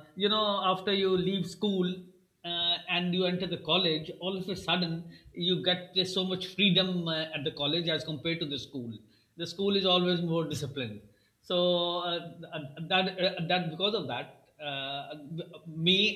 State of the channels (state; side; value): identical; both; correlation 1.00